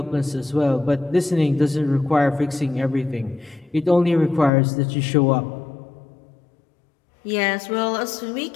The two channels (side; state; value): right; drops out; at 4.5 s